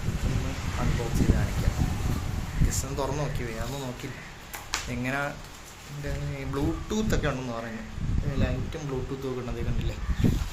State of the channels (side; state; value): both; identical; correlation 1.00